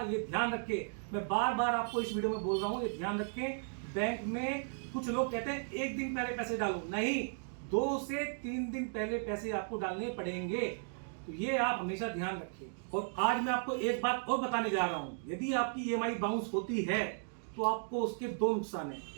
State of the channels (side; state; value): left; silent; digital silence